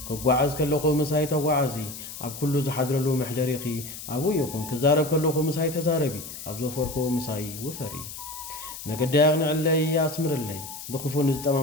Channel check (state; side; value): noise; left; hiss, 11 dB below the sound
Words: ክጓዓዝ ከለኹ ምሳይ ተጓዓዚ ኣብ ኩሉ ዝሓድረሉ መሕደሪኺ ኣብኡ ይኹን ክዛረብ ከለኹ ምሳይ ተዛረቢ ኣብ ዘፈርኮ ምሳይ ውፈሪ መገዲ ኣቕንዕለይ ኣስምርለይ ብክፉ